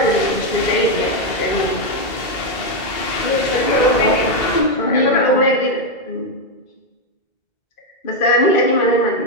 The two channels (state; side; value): late; right; 2.0 ms